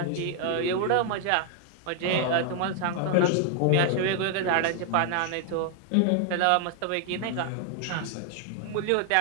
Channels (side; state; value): both; different; correlation 0.00